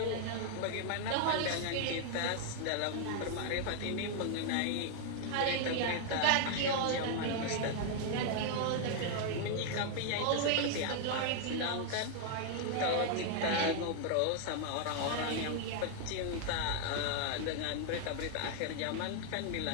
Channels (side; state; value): both; different; correlation 0.00